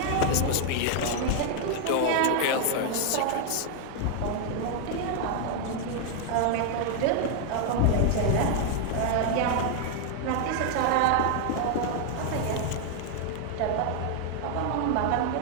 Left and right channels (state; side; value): different; both; correlation 0.00